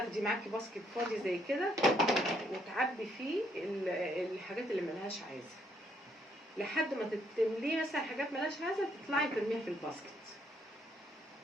معاكي باسكت فاضي زي كده وتعبي فيه الحاجات اللي ملهاش عايزة لحد ما تمليه مثلا حاجات ملهاش عايزة تطلعي ترميها في الباسكت.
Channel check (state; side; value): normal; both; correlation 0.71